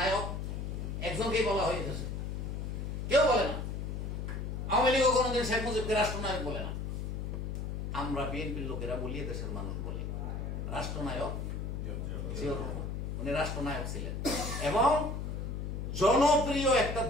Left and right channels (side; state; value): left; noise; hum, 4 dB below the sound